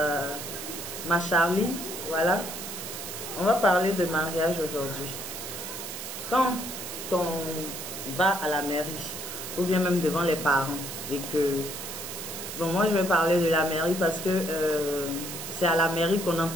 ma Charlie, voilà. On va parler de mariage aujourd'hui. Quand on va à la mairie, ou bien même devant les parents, et que... Bon, moi je vais parler de la mairie parce que c'est à la mairie qu'on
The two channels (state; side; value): noise; right; hiss, 8 dB below the sound